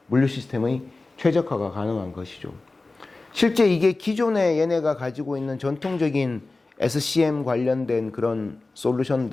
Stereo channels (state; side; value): quieter; right; 3.3 dB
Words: 물류 시스템의 최적화가 가능한 것이죠. 실제 이게 기존에 얘네가 가지고 있는 전통적인 SCM 관련된 그런